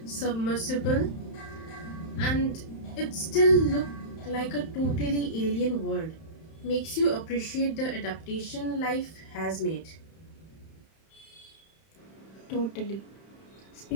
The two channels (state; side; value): late; right; 31 ms